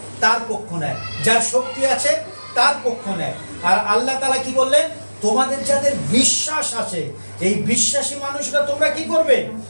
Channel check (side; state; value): both; inverted; correlation -1.00